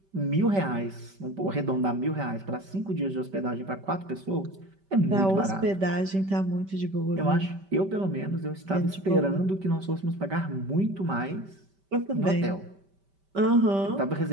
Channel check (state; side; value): late; left; 5.1 ms